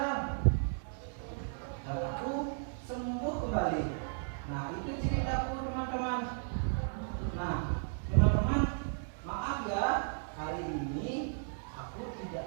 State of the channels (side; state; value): left; silent; digital silence